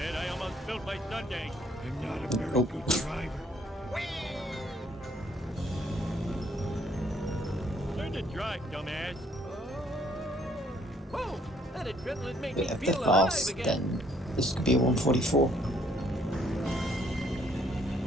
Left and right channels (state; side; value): normal; both; correlation 0.66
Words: I almost spilled my sundae. I'm not a very good driver. Learn to drive, dumbass. Whoa! That adrenaline made me But if feel they're alive fast, again. then this could be a 144.